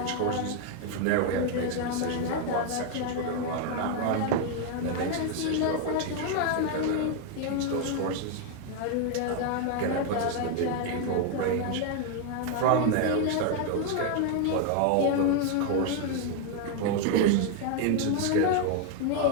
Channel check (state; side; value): different; both; correlation 0.00